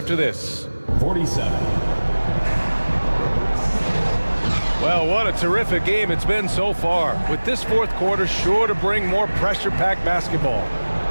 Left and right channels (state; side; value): inverted; both; correlation -1.00